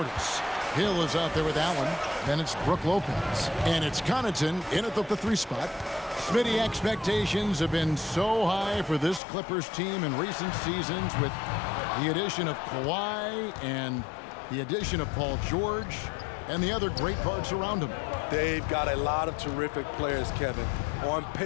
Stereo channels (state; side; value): drops out; right; at 9.2 s